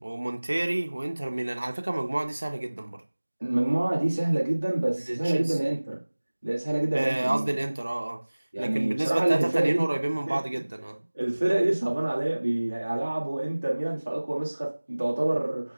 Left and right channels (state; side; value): inverted; both; correlation -1.00